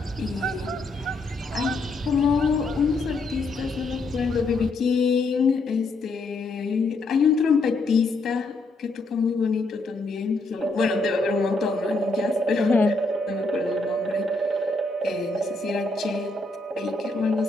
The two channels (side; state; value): right; quieter; 3.2 dB